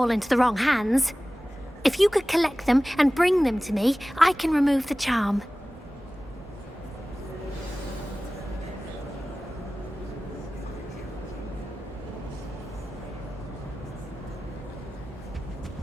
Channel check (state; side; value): normal; both; correlation 0.97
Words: into the wrong hands. If you could collect them and bring them to me, I can remove the charm.